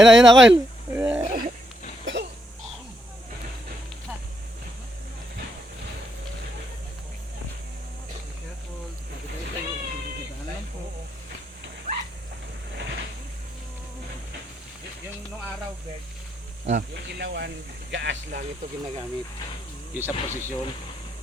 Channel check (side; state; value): both; normal; correlation 0.77